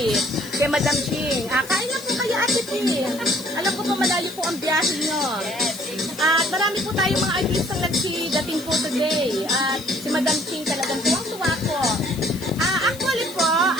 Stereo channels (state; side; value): noise; left; hiss, 16 dB below the sound